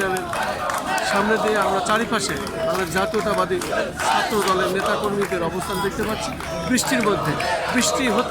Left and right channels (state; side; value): identical; both; correlation 1.00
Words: সামনে দিয়ে আমরা চারিপাশে আমাদের জাতীয়তাবাদী ছাত্র দলের নেতাকর্মীদের অবস্থান দেখতে পাচ্ছি। বৃষ্টির মধ্যে বৃষ্টি